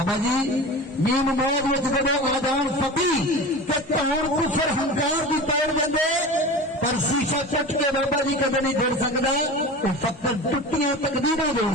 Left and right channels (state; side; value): normal; both; correlation 0.32